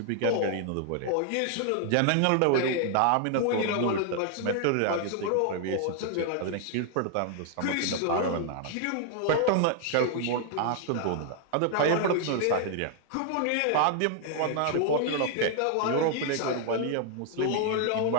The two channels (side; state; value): both; different; correlation 0.00